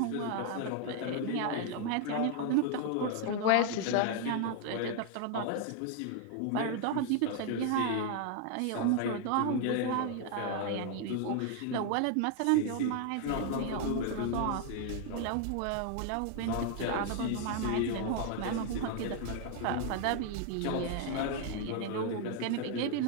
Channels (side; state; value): both; different; correlation 0.00